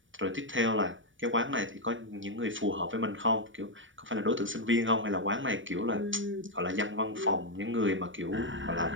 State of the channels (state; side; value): late; left; 0.56 ms